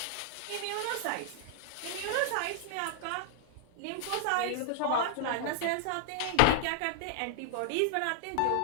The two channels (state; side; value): different; both; correlation -0.01